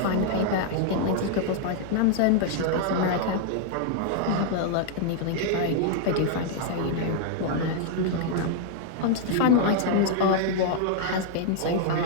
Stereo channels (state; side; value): different; both; correlation -0.01